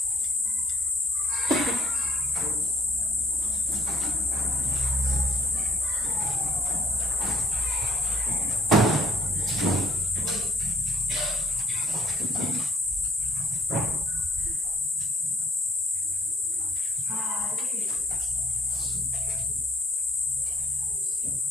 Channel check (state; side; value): normal; both; correlation 0.59